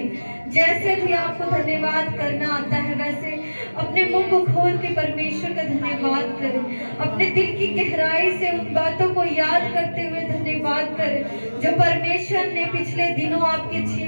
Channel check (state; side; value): inverted; both; correlation -1.00